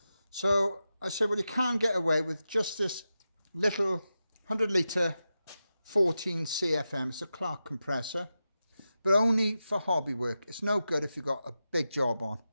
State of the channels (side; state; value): both; inverted; correlation -0.91